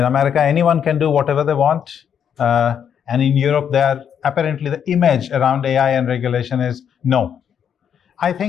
America, anyone can do whatever they want, and in Europe, apparently the image around AI and regulation is no. I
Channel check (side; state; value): right; quieter; 8.2 dB